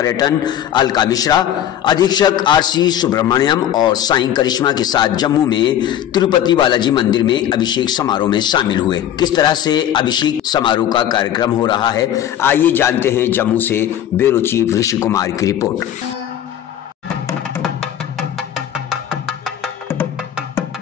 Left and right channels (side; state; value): right; quieter; 10.8 dB